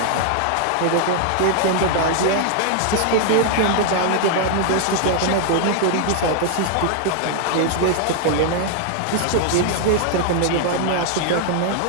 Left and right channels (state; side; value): different; both; correlation 0.00